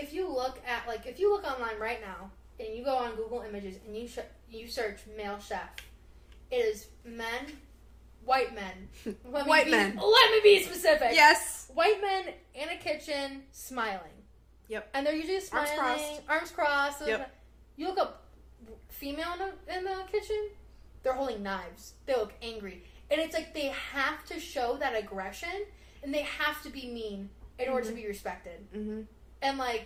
you look at if you look online right now and you go on Google Images and you search male chef, it is men, white men. White men. Let me be specific. Yes. White men in a kitchen smiling. Yep. And they're usually smiling, arms crossed. Yep. You look up female in the kitchen, they're holding knives. They look angry. And it's they have to show that aggression, and they have to be mean in order to be respected. Mm-hmm. And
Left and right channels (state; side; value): identical; both; correlation 1.00